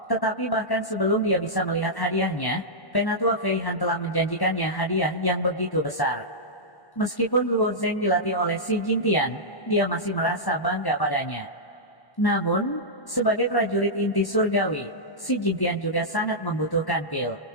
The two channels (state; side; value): late; right; 1.1 ms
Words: Tetapi bahkan sebelum dia bisa melihat hadiahnya, Penatua Fei Han telah menjanjikannya hadiah yang begitu besar. Meskipun Luo Zheng dilatih oleh si Jingtian, dia masih merasa bangga padanya. Namun, sebagai prajurit inti surgawi, si Jingtian juga sangat membutuhkan pil.